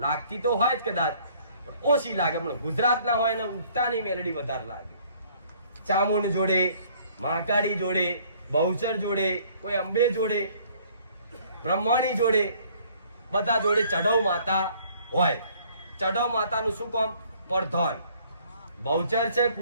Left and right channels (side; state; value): both; inverted; correlation -0.59